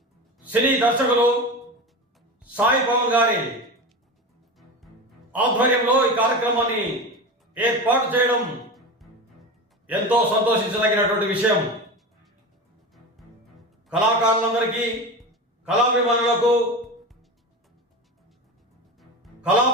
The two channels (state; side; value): normal; both; correlation 0.26